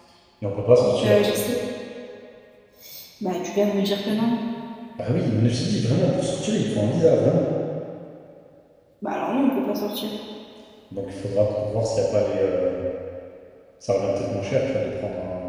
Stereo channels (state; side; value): identical; both; correlation 1.00